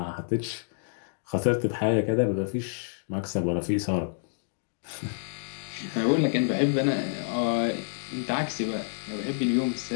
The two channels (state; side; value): silent; right; digital silence